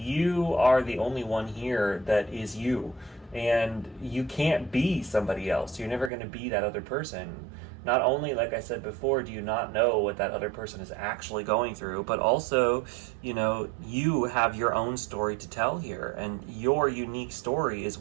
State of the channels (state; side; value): drops out; left; at 6.1 s